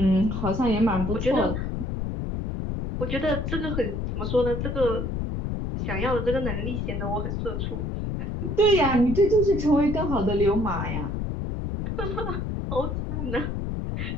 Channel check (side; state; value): left; noise; rumble, 3 dB below the sound